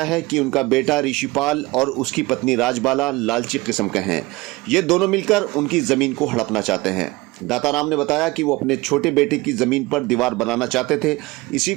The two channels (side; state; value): left; quieter; 21.6 dB